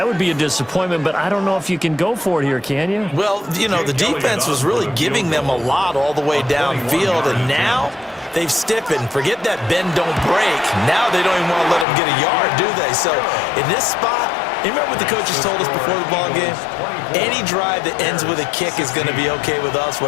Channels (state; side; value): drops out; right; at 11.9 s